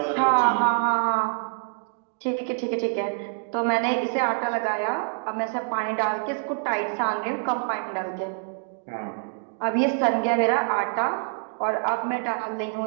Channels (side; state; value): left; silent; digital silence